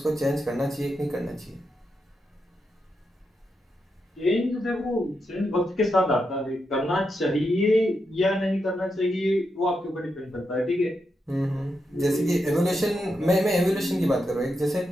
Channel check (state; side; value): normal; both; correlation 0.85